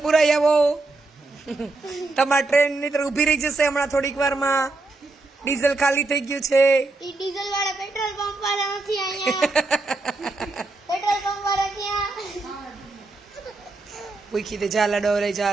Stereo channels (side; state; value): left; quieter; 3.3 dB